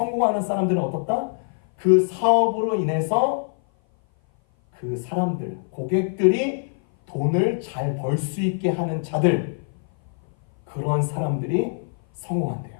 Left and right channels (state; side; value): silent; right; 57 dB below the other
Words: 사람들은 어떻다? 그 사업으로 인해서 그 사람들, 고객들이 돈을 잘 벌 수 있게 하는 자들, 그런 사람들이 성공한대요.